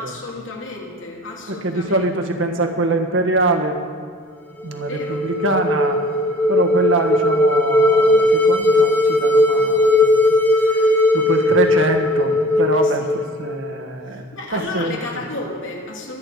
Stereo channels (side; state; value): both; normal; correlation 0.47